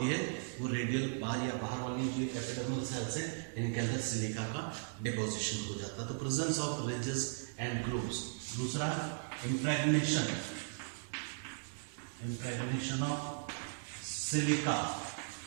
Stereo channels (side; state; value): left; silent; digital silence